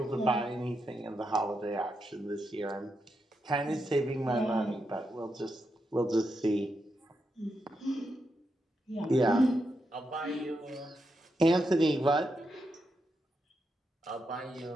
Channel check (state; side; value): normal; both; correlation 0.84